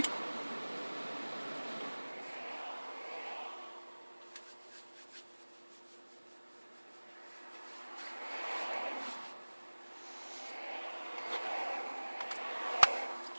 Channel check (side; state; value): both; inverted; correlation -1.00